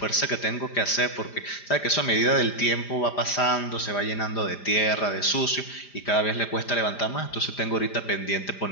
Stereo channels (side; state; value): right; late; 5.0 ms